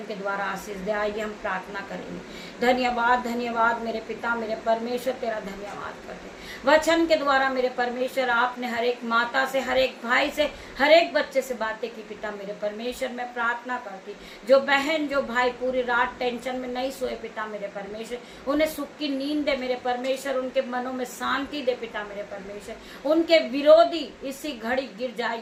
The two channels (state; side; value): identical; both; correlation 1.00